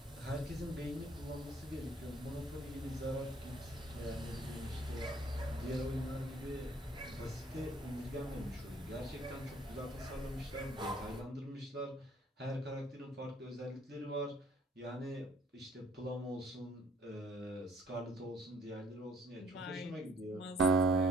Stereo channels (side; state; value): both; normal; correlation 0.60